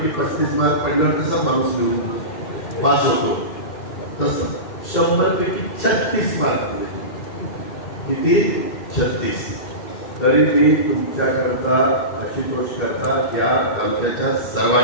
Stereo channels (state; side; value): late; right; 2.1 ms